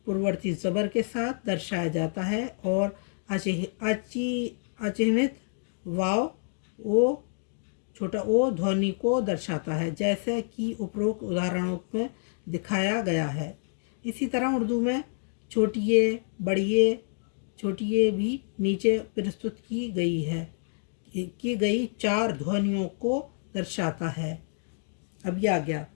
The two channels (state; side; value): silent; right; digital silence